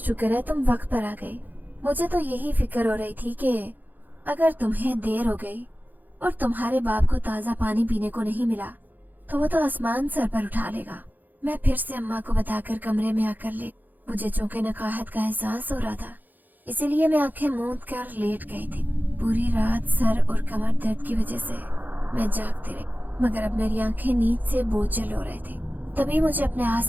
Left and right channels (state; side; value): late; left; 0.085 ms